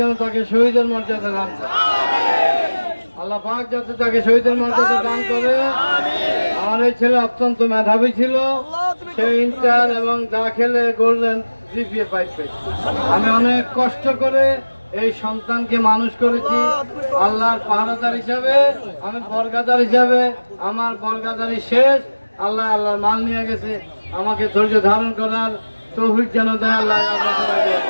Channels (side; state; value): both; inverted; correlation -1.00